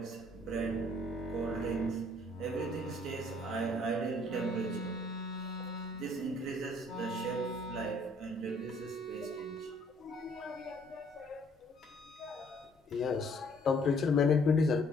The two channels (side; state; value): both; normal; correlation 0.61